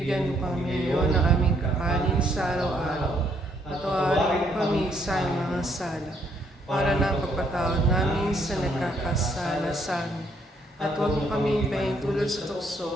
mo kami ngayon ng aming kakanin sa araw-araw, at tawarin mo kami sa mga sala, para na pagpatawad namin sa nagkakasala sa amin. At huwag mo kami pahintulot sa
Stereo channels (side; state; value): both; normal; correlation 0.70